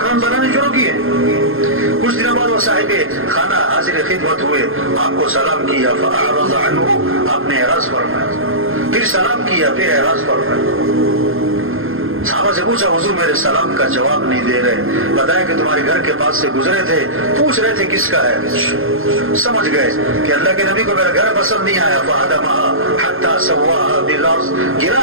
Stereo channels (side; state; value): left; late; 0.60 ms